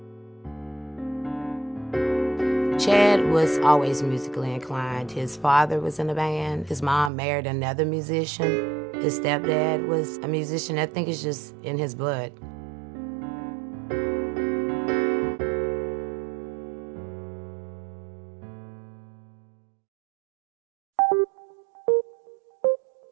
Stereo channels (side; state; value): left; drops out; at 7.1 s